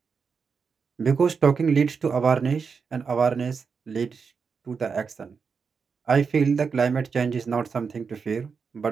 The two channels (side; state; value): left; quieter; 5.6 dB